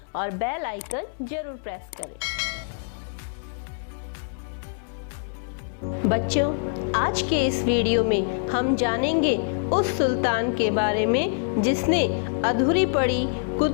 और बेल आइकन जरूर प्रेस करें। बच्चों, आज के इस वीडियो में हम जानेंगे उस सुल्तान के बारे में जिसने अधूरी पड़ी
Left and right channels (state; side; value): silent; right; 60 dB below the other